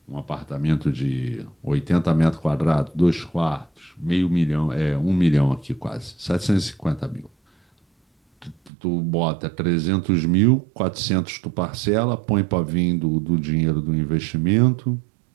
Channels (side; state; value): left; drops out; at 8.7 s